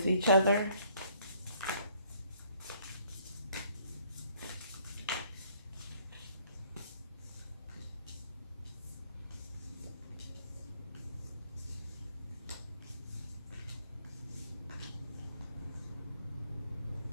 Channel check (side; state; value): both; inverted; correlation -0.63